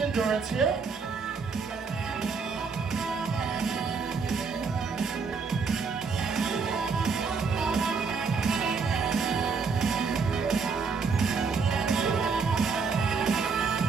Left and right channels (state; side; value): quieter; left; 5.1 dB